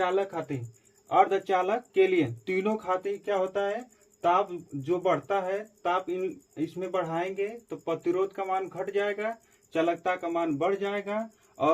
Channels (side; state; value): both; identical; correlation 1.00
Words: खातिर, अर्धचालक के लिए तीनों खातिर क्या होता है? ताप जो बढ़ता है, ताप इसमें बढ़ाएंगे तो प्रतिरोध का मान घट जाएगा, चालकता का मान बढ़ जाएगा